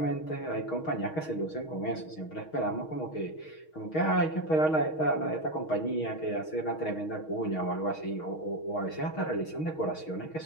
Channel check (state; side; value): late; right; 6.4 ms